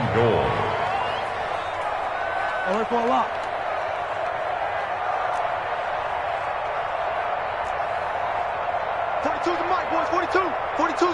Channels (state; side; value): identical; both; correlation 1.00